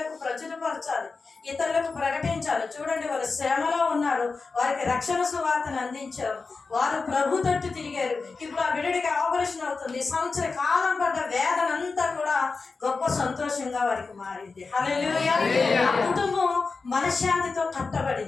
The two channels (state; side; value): quieter; right; 4.3 dB